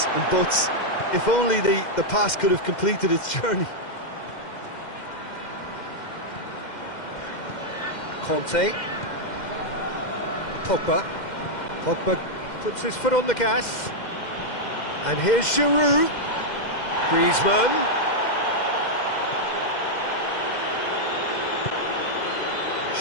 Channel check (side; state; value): right; late; 2.1 ms